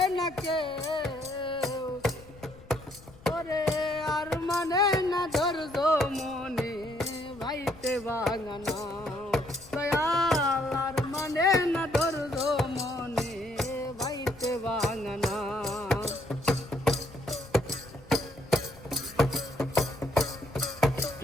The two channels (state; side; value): noise; left; rumble, 22 dB below the sound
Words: না কেউ। ওরে আর মানে না ধৈর্য মনে বাইতে ভাঙা নাও দয়াল, আর মানে না ধৈর্য মনে বাইতে ভাঙা নাও।